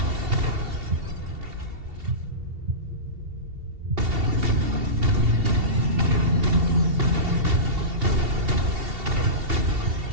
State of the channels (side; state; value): left; late; 2.7 ms